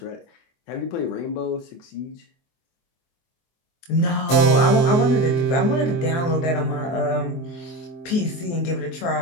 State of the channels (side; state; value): right; late; 24 ms